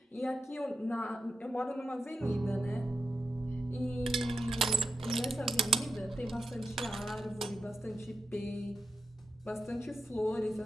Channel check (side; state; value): both; normal; correlation 0.88